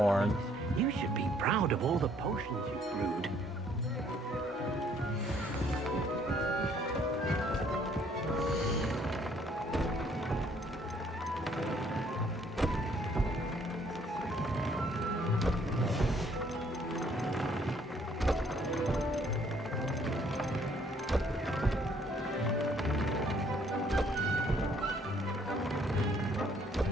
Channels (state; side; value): normal; both; correlation 0.64